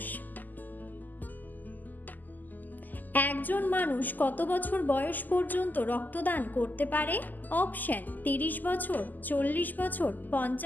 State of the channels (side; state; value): right; late; 0.085 ms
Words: একজন মানুষ কত বছর বয়স পর্যন্ত রক্তদান করতে পারে? অপশন: 30 বছর, 40 বছর,